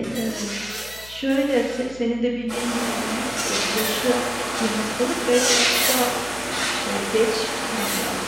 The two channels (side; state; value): left; noise; hum, 20 dB below the sound